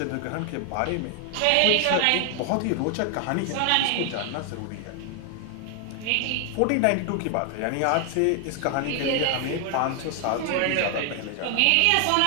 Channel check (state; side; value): different; both; correlation 0.00